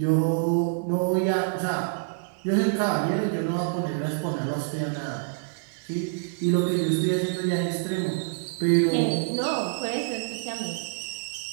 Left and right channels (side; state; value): left; silent; digital silence